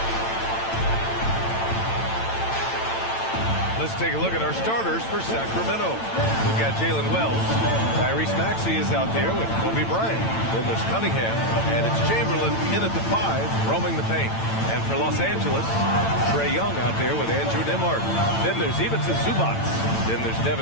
Let's take a look at our starters for Sacramento. We've got Jalen Wells. Tyrese Maxey is out there with Kobe Bryant. Then there's Cunningham, and it's Chamberlain in at the 5, roaming the paint. And for Los Angeles, Trae Young out there with Andrew Nembhard. Then there's Ivica Zubac. Then there's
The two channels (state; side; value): late; right; 8.9 ms